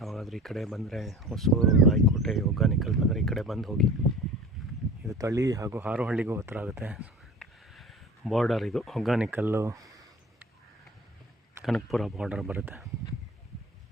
ಈ ಕಡೆ ಬಂದರೆ, ಹೊಸೂರು, ರಾಯಕೋಟೆ, ಹೊಗೇನಕಲ್ ಬಂದರೆ ಈ ಕಡೆ ಬಂದು ಹೋಗಿ. ಇದು ತಳಿ ಹಾಗೂ ಹಾರೋಹಳ್ಳಿಗೂ ಹತ್ರ ಆಗುತ್ತೆ. ಬಾರ್ಡರ್ ಇದು, ಹೊಗೇನಕಲ್ಲು ಕನಕಪುರ ಬಾರ್ಡರ್ ಬರುತ್ತೆ.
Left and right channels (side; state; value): both; normal; correlation 0.39